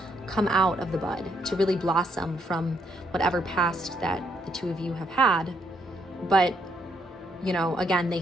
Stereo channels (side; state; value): both; normal; correlation 0.74